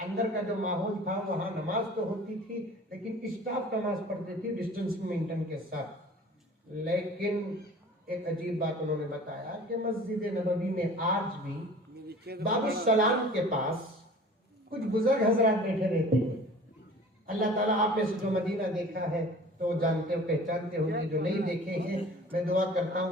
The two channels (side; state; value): both; normal; correlation 0.45